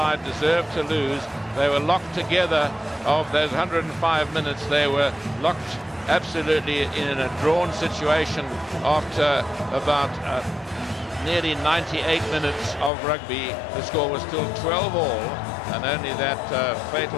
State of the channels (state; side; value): drops out; right; at 12.9 s